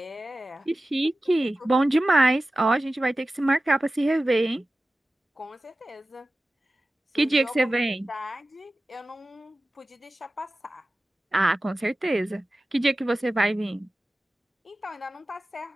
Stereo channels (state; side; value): normal; both; correlation 0.95